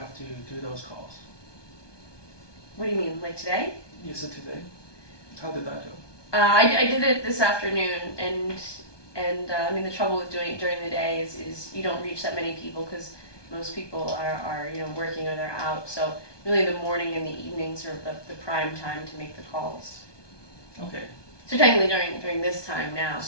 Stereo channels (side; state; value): right; late; 1.2 ms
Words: to do those calls? What do you mean, like today? Yes, today. How did that go? I did it this afternoon, and I mean the trouble with doing it during the day is you don't reach that many people because most people are working or they're out. So really the morning and the evenings are the prime time to make the calls. Okay. So technically during this time now.